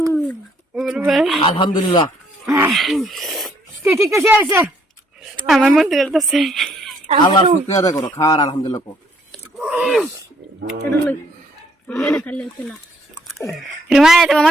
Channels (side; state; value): both; normal; correlation 0.66